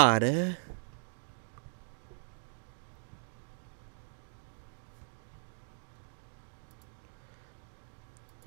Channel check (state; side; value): silent; left; 53 dB below the other